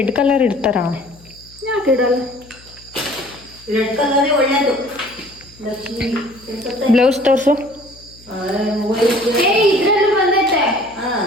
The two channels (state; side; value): noise; left; hum, 25 dB below the sound